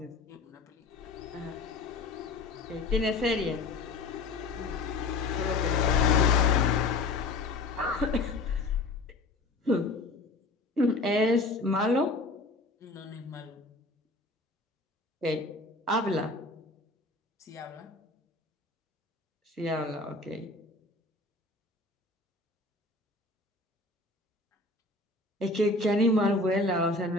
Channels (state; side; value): quieter; right; 3.3 dB